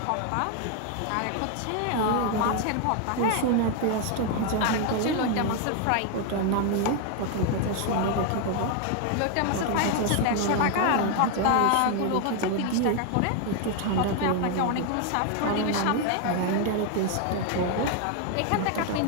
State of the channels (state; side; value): different; both; correlation 0.01